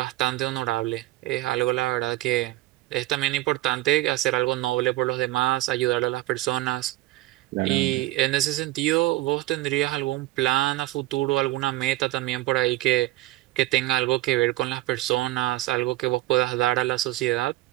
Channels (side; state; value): left; quieter; 17.3 dB